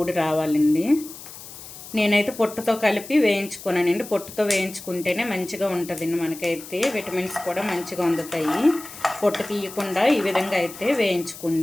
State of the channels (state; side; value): noise; left; hiss, 15 dB below the sound